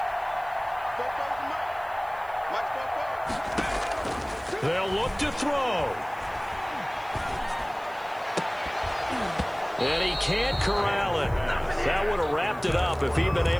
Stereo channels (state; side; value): noise; right; hiss, 26 dB below the sound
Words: They'll look to throw. And he can't corral it. That would have wrapped it up if he'd been